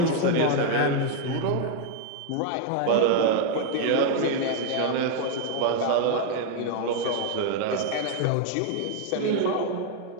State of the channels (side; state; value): both; different; correlation 0.00